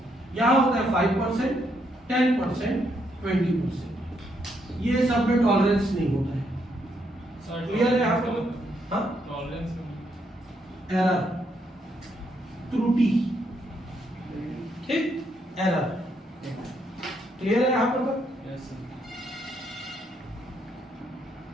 यहां होता है 5%, 10%, 20%। ये सब में टॉलरेंस नहीं होता है। क्लियर है यहाँ पर? हाँ, टॉलरेंस, एरर, त्रुटि, ठीक, एरर। क्लियर है यहाँ पर? Yes sir.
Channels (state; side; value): normal; both; correlation 0.76